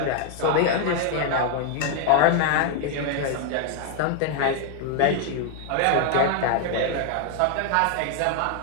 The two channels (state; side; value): different; both; correlation 0.00